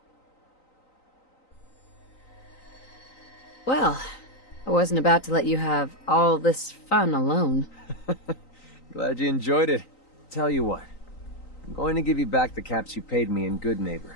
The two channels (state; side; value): late; right; 3.9 ms